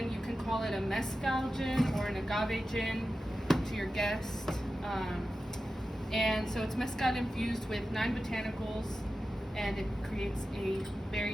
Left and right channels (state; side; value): normal; both; correlation 0.93